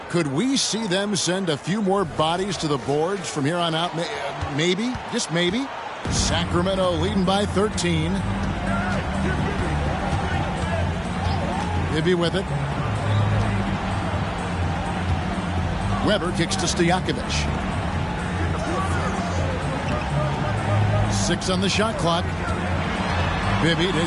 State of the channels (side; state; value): both; identical; correlation 1.00